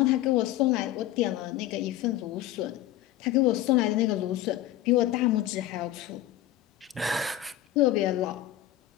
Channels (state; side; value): quieter; right; 13.3 dB